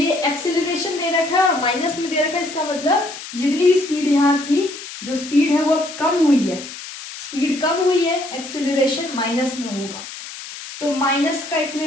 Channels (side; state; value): left; noise; hiss, 12 dB below the sound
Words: एक्सेलरेशन दे रखा है और माइनस में दे रखा है, इसका मतलब जितनी भी स्पीड यहाँ थी, जो स्पीड है वो अब कम हुई है, स्पीड कम हुई है, एक्सेलरेशन माइनस में होगा। तो माइनस का